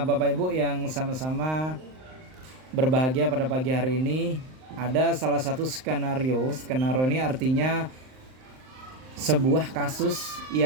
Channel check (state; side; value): late; left; 39 ms